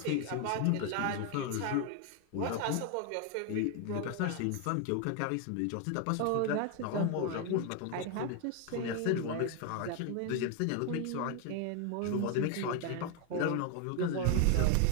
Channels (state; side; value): different; both; correlation 0.01